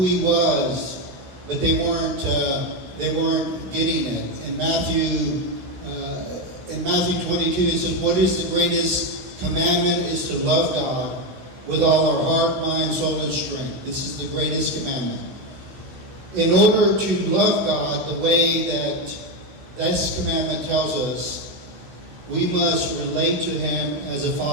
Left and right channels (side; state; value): left; late; 15 ms